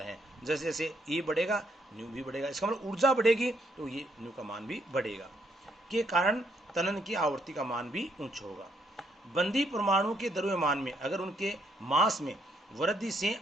हैं। जैसे जैसे E बढ़ेगा न्यू भी बढ़ेगा, इसका मतलब ऊर्जा बढ़ेगी तो ये न्यू का मान भी बढ़ेगा, के कारण तनन की आवृत्ति का मान भी उच्च होगा। बंदी परमाणु के द्रव्यमान में अगर उनके मास में वृद्धि से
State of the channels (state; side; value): normal; both; correlation 0.73